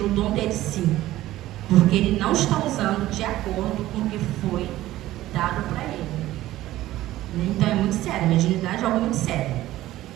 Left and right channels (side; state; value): left; quieter; 15.4 dB